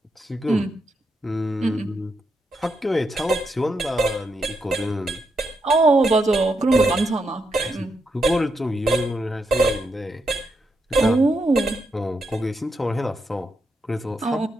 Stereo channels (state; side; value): normal; both; correlation 0.82